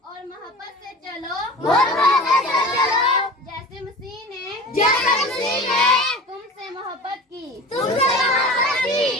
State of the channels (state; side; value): normal; both; correlation 0.36